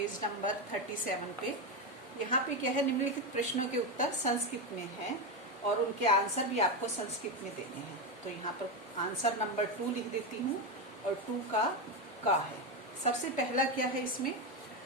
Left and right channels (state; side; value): normal; both; correlation 0.11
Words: नंबर 37 पे यहाँ पे क्या है, निम्नलिखित प्रश्नों के उत्तर संस्कृत में है और उनके आंसर भी आपको संस्कृत में देने हैं। तो यहाँ पर आंसर नंबर 2 लिख देती हूँ और 2 का है। सबसे पहला क्या है, इसमें